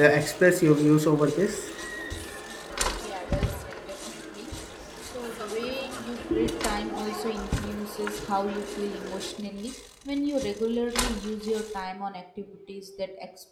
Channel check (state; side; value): identical; both; correlation 1.00